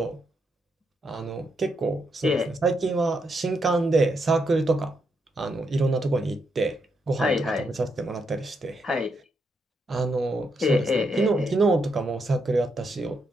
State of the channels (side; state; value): both; normal; correlation 0.80